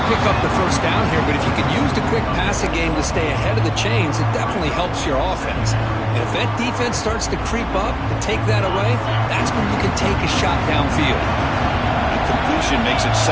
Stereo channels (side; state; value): both; identical; correlation 1.00